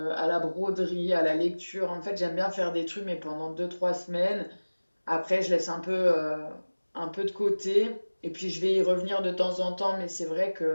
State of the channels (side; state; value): both; inverted; correlation -1.00